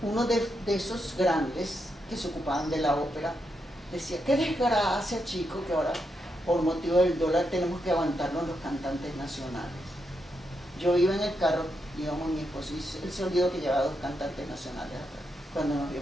uno de esos grandes que se ocupaban de la ópera decía, qué desgracia, chico, que ahora por motivo del dólar tenemos que aguantarnos los cantantes nacionales. Yo iba en el carro, íbamos mi esposo, y él se olvidó que llevaba 2 cantantes nacionales atrás. Cuando nos vio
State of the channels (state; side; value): normal; both; correlation 0.83